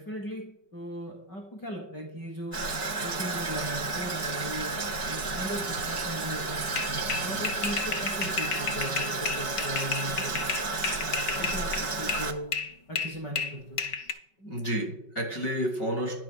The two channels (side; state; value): right; late; 5.3 ms